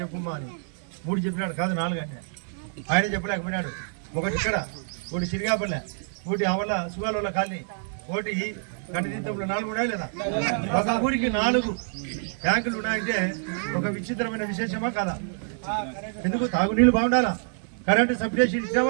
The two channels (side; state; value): left; silent; digital silence